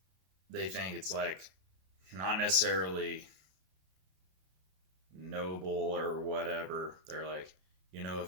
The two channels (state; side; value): late; left; 32 ms